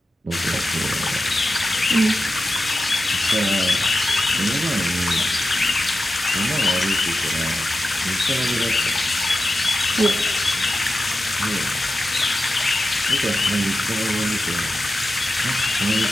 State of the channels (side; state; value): both; normal; correlation 0.91